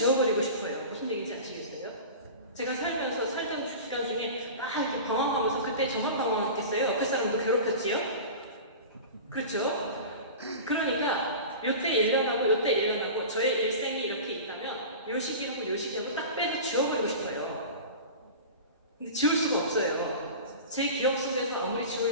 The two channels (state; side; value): inverted; both; correlation -0.33